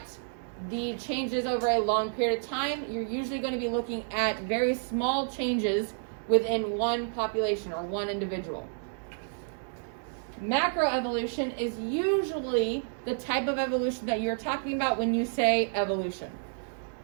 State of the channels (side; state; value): left; silent; digital silence